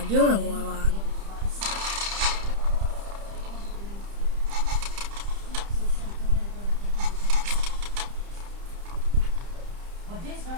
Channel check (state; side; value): late; left; 30 ms